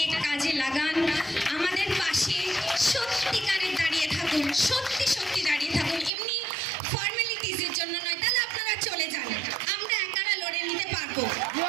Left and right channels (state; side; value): drops out; left; at 6.1 s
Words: কাজে লাগান, আমাদের পাশে সত্যিকারে দাঁড়িয়ে থাকুন, সত্যি দাঁড়িয়ে থাকুন, এমনি ফর্মালিটিজের জন্য নয়। তাহলে আপনারা চলে যান, আমরা একারা লড়ে নিতে পারবো।